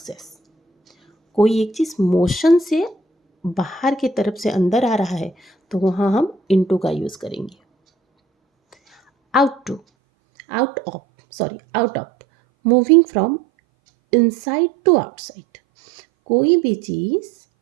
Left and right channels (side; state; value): left; drops out; at 9.8 s